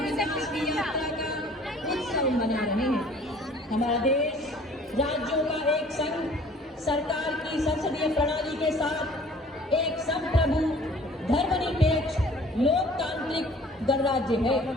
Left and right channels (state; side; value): normal; both; correlation 0.52